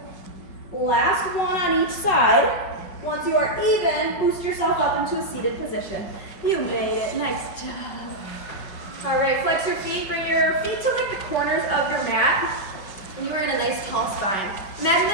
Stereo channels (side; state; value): right; late; 5.3 ms